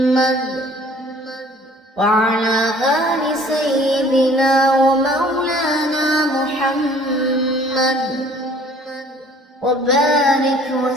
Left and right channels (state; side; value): normal; both; correlation 0.53